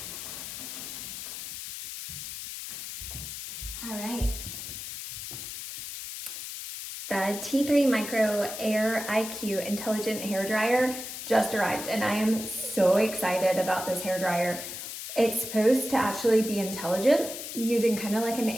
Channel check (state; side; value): noise; left; hiss, 8 dB below the sound